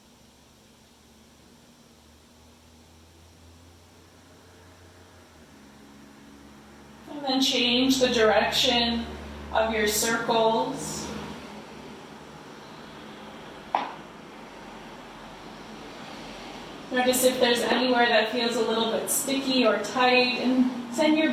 And then change the direction of your circles. Notice if there's anywhere that feels a little bit sticky or tight, and send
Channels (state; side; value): identical; both; correlation 1.00